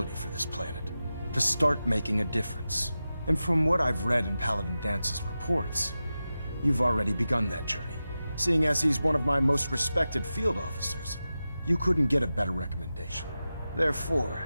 for this planet. To start making a difference. And from what I've read in Paladin Dance's reports, you've already begun that journey. Seeing as he's one of my most respected field officers, you couldn't get a better recommendation. Therefore,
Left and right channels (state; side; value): inverted; both; correlation -0.93